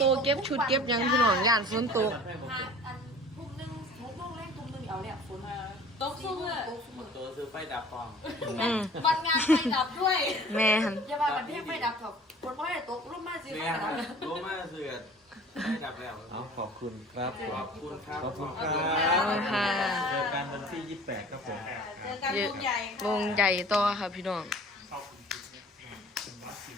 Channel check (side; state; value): both; normal; correlation 0.46